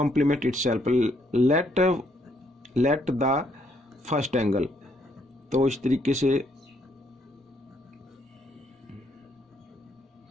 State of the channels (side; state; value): both; normal; correlation 0.71